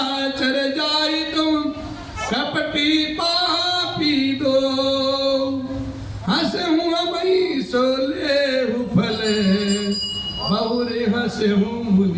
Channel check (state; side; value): identical; both; correlation 1.00